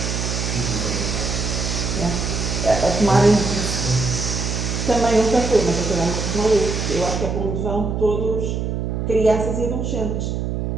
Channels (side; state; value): right; noise; hum, 2 dB below the sound